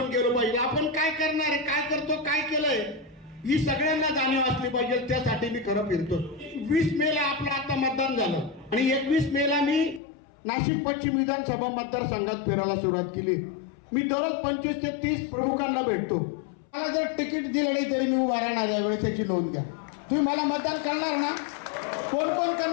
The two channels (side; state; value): right; drops out; at 10.0 s